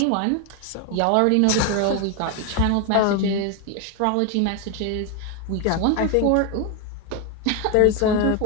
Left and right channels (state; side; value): different; both; correlation 0.01